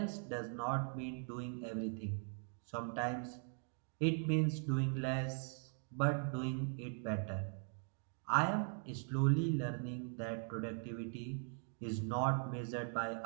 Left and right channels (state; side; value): silent; left; 51 dB below the other